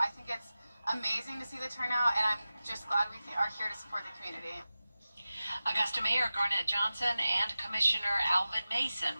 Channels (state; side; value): inverted; both; correlation -0.95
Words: think it's amazing to see the turnout, and I'm just glad we are here to support the community. Augusta Mayor Garnett Johnson and Commissioner Alvin Mason